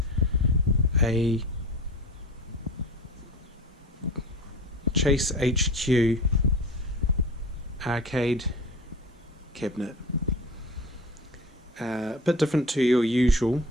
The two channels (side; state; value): both; normal; correlation 0.36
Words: a Chase HQ arcade cabinet. A bit different to your usual